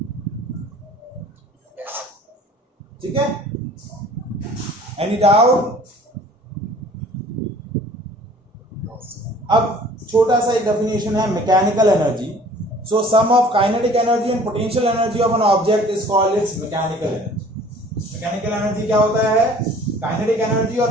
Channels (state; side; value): normal; both; correlation 0.50